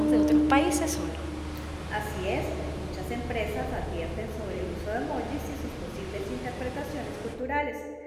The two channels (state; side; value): identical; both; correlation 1.00